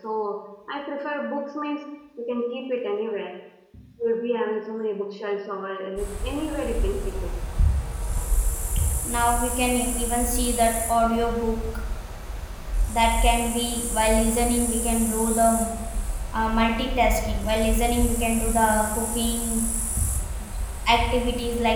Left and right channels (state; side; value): identical; both; correlation 1.00